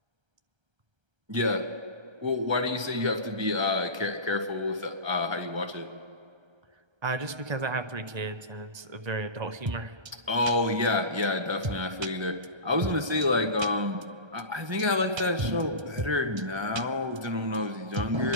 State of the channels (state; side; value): late; left; 1.3 ms